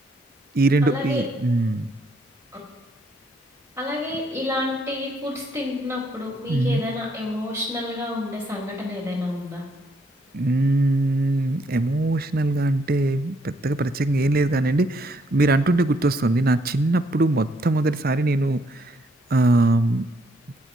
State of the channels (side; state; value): both; normal; correlation 0.71